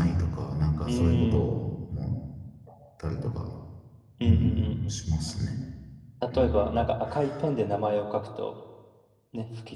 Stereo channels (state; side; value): identical; both; correlation 1.00